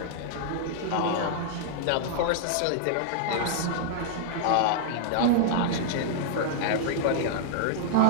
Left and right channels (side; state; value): both; different; correlation -0.01